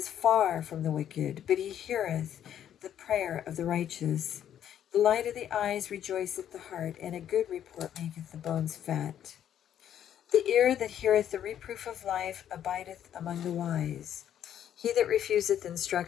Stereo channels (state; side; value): quieter; right; 10.2 dB